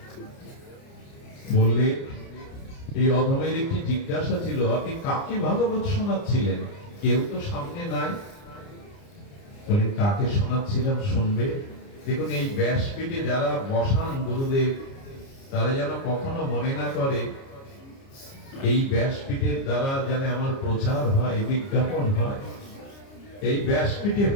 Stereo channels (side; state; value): right; late; 29 ms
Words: বললে, এই অধমের একটি জিজ্ঞাসা ছিল, আপনি কাকে ভাগবত শোনাচ্ছিলেন? কেউ তো সামনে নাই। বলে, কাকে শোনাচ্ছিলাম শুনবে? দেখুন, এই ব্যাসপীঠে যারা বসান গুরুদেব, তারা যেন কখনো মনে না করে এই ব্যাসপীঠের দ্বারা যেন আমার প্রচার হয়, বিজ্ঞাপন হয়। এই ব্যাসপীঠে